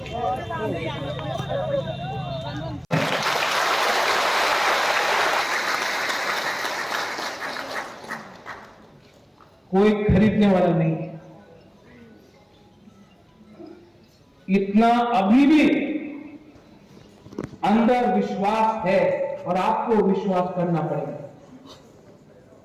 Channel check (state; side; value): identical; both; correlation 1.00